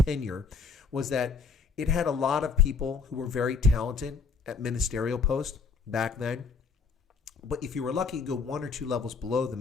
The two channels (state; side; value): quieter; right; 5.0 dB